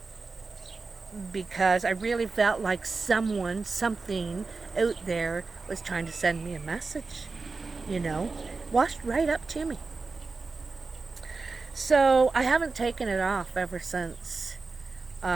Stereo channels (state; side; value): quieter; left; 4.1 dB